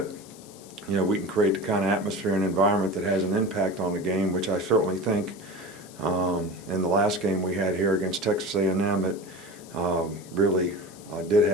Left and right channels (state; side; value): noise; left; hiss, 21 dB below the sound